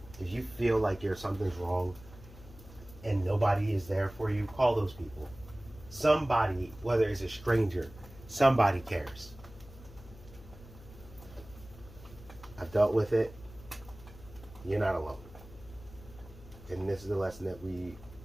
if you feel like something's wrong and nobody is there for you, call those people. Somebody, whether it's a stranger, somebody cares. I've dealt with it. You're not alone. And this is the lesson that we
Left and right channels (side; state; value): left; noise; hum, 19 dB below the sound